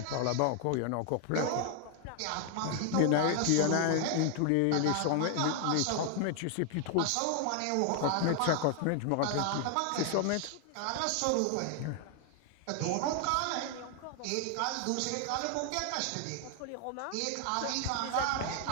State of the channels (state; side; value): different; both; correlation 0.00